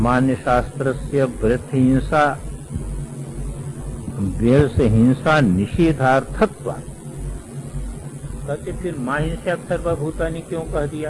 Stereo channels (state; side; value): identical; both; correlation 1.00